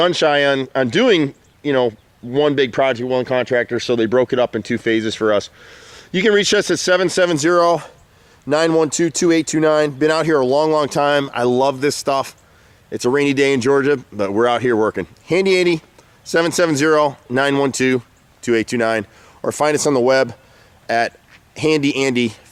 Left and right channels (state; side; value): identical; both; correlation 1.00